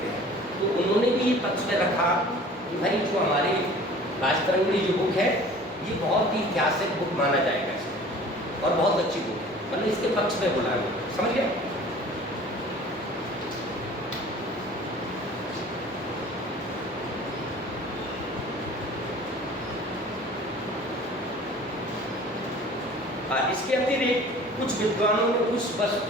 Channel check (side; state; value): both; normal; correlation 0.46